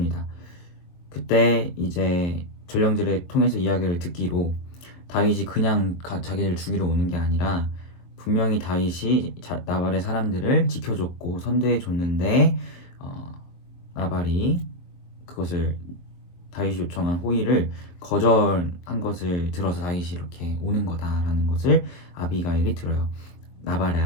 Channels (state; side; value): late; right; 23 ms